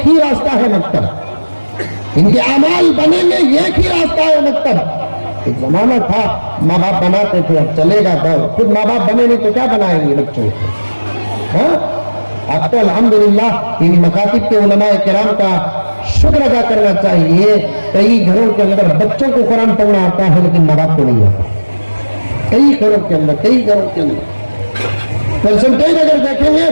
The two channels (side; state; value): both; inverted; correlation -1.00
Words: ही रास्ता है मकतब, इनके अमाल बनेंगे, एक ही रास्ता है मकतब। एक जमाना था माँ बाप बनाते थे, अब चलेगा दौर, खुद माँ बाप बने नहीं तो क्या बनाएंगे बच्चों को। हाँ, अब तो अल्हम्दुलिल्लाह इन मकातिब के उलमाए किराम का शुक्र अदा करना चाहिए। कई घरों के अंदर बच्चों को कुरान पढ़ना आता है लेकिन माँ बाप को नहीं आता, कई घरों के अंदर, कई घरों के अंदर परसेंटेज अगर देखेंगे